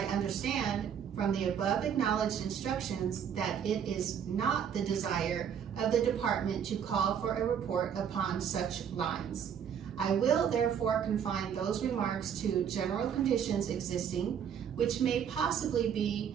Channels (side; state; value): left; quieter; 8.2 dB